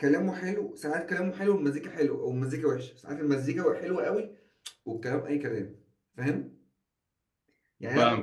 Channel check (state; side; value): identical; both; correlation 1.00